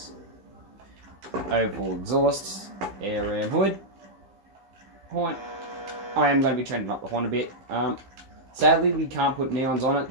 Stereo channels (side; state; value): left; late; 15 ms